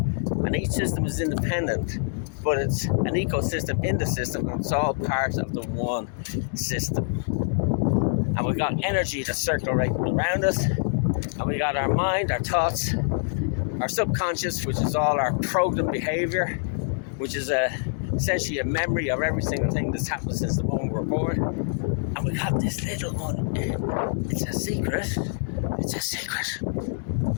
and each system is independent, but it's an ecosystem in the system, and it's all part of the one system. And we've got energy that's circulating around us, and we got our mind, our thoughts, our subconscious, which is all our programmed behavior, which is essentially a memory of every single thing that's happened since the moment we were born. And we got this little one. It's a secret.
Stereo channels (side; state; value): right; silent; digital silence